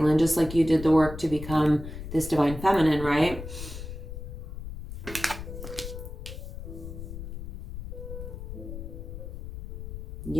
just like you did the work to become this divine feminine, right?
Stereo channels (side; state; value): left; noise; rumble, 9 dB below the sound